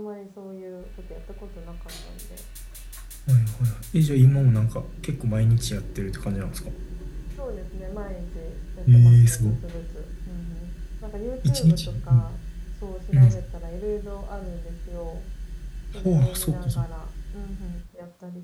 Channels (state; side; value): identical; both; correlation 1.00